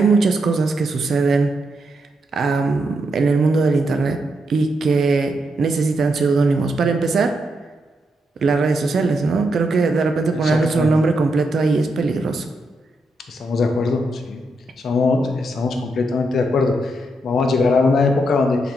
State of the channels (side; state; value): both; normal; correlation 0.82